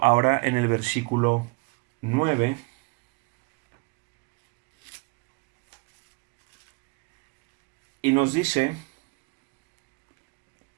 ahora en el versículo 9. Y nos dice,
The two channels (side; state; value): left; quieter; 29.1 dB